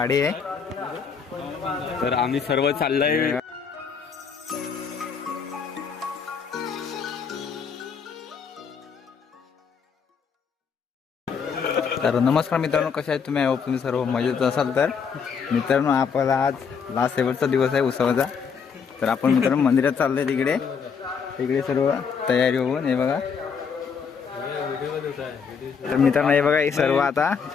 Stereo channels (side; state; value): right; quieter; 6.2 dB